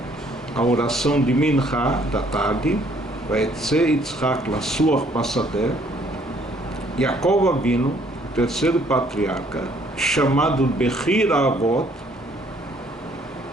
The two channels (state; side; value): normal; both; correlation 0.63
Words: a oração de Minha da tarde, Vaetze Yitzhak Lasuach Pasadeh. Yaakov Avinu, o terceiro patriarca, chamado Bechir Avot,